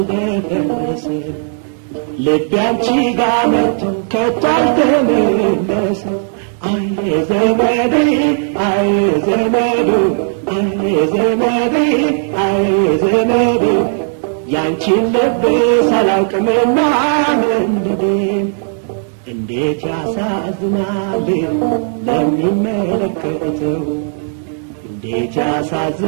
ልቤ አንቺ ጋር መጥቶ ከቶ አልተመለሰም አይ ዘመዴ አይ ዘመዱ አይ ዘመዴ አይ ዘመዱ ያንቺን ልብስ አላውቅምና መንደዴ እንዴት ያሳዝናል ለሚመለከተው እንዴት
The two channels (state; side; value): silent; left; 70 dB below the other